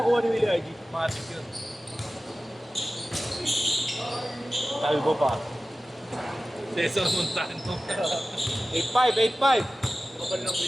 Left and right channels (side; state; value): both; normal; correlation 0.95